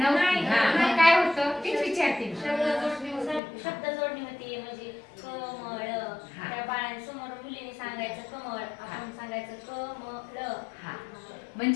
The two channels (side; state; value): right; drops out; at 3.4 s